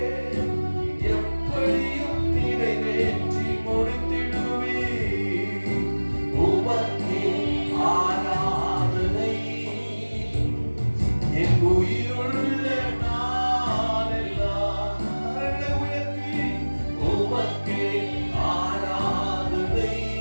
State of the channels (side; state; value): both; inverted; correlation -1.00